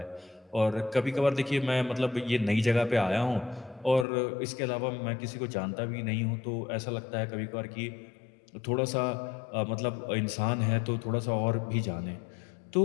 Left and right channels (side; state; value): right; drops out; at 4.0 s